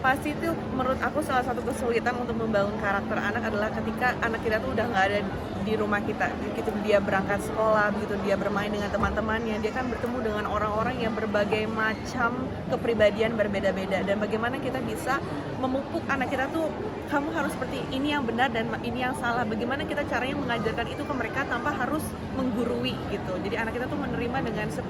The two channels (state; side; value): identical; both; correlation 1.00